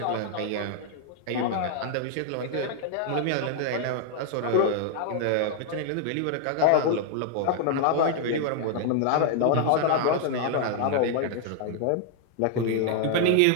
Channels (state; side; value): different; both; correlation 0.00